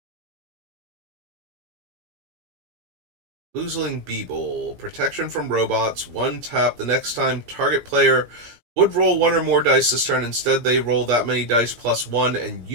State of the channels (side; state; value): left; late; 17 ms